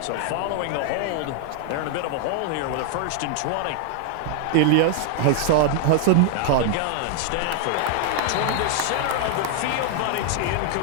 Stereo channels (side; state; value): both; different; correlation 0.00